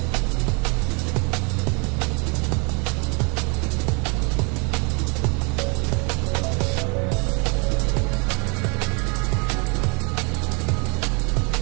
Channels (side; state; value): left; quieter; 33.0 dB